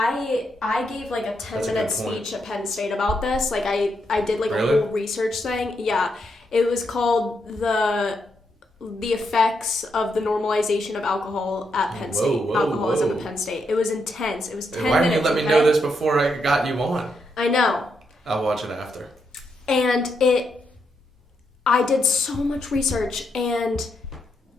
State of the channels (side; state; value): both; normal; correlation 0.81